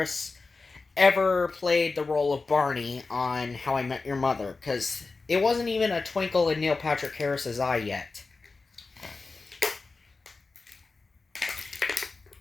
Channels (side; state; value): right; quieter; 3.9 dB